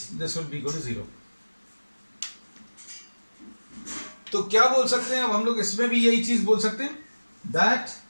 this will be equal to 0. तो क्या बोल सकते हैं अब हम लोग इसमें भी यही चीज बोल सकते हैं that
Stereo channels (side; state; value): both; inverted; correlation -1.00